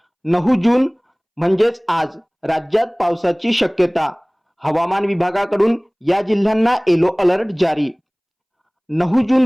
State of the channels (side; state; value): both; identical; correlation 1.00